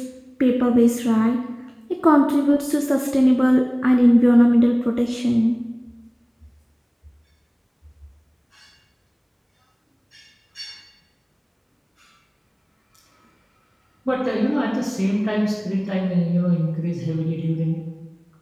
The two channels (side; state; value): both; identical; correlation 1.00